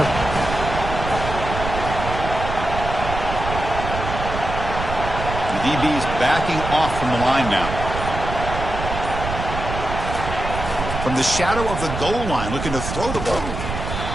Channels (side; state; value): right; noise; rumble, 6 dB below the sound